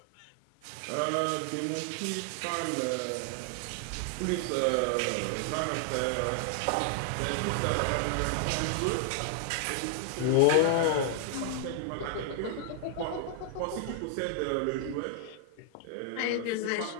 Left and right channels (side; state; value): both; different; correlation 0.00